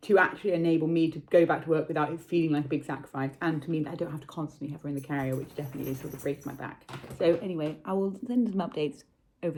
to actually enable me to go back to work without it feeling like a big sacrifice, and to mean that I don't have to constantly have her in the carrier, which definitely is sort of breaks my back. So anyway, I will send some updates over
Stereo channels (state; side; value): identical; both; correlation 1.00